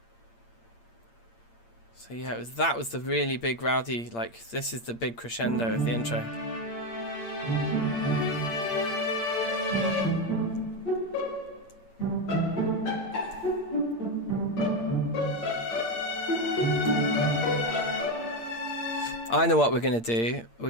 So yeah, that was the really big rowdy, like, this is the big crescendo of the intro. I know what we're going to do. We're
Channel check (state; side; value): late; right; 8.7 ms